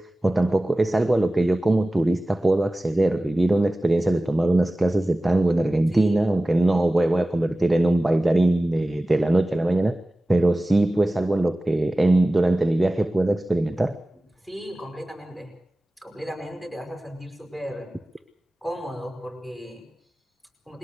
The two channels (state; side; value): normal; both; correlation 0.97